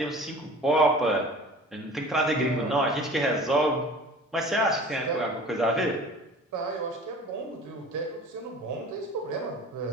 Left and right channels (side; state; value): both; normal; correlation 0.43